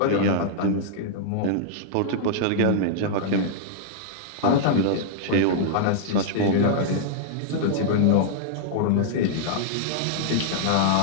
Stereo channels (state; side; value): different; both; correlation -0.01